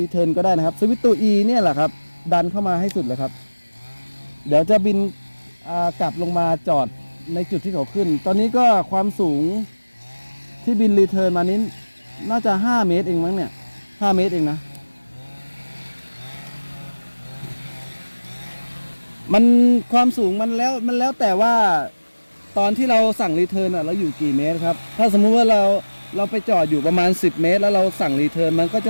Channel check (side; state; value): both; inverted; correlation -1.00